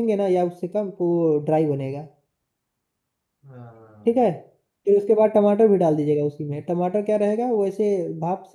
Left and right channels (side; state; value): both; identical; correlation 1.00